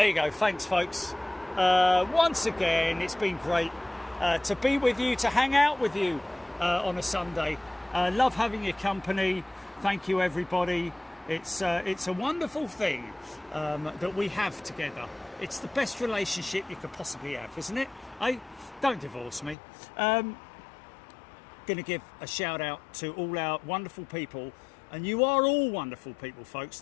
you go. Thanks, folks. Once again, it's been great to be with you, to hang out with you on a Sunday. Love having your company. Thank you, everybody. It's a wonderful thing that we have together. It's the best relationship you could possibly have, isn't it? Don't divorce me. Going to give a shout out to all our wonderful people, and you are all wonderful people, folks.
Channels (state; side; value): drops out; right; at 19.6 s